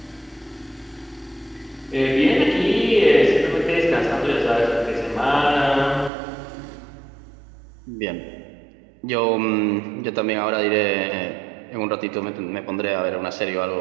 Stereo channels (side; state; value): left; drops out; at 6.1 s